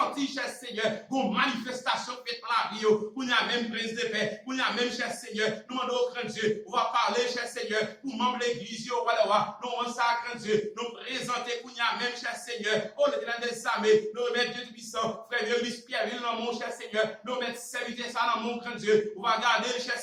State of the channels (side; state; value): both; identical; correlation 1.00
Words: cher Seigneur, une manifestation faite dans la vie, pour y a même prise de paix, pour y a même, cher Seigneur, nous demandons au grand Dieu, on va parler, cher Seigneur, pour membres de l'église, nous demandons ça, grand Dieu, nous présenter, pour y a même, cher Seigneur, oh, l'éternel des armées, nous remettre Dieu puissant, frère Vieux Pierre, dans mon cher Seigneur, nous remettre serviteur ça dans mon grand Dieu, on va garder, cher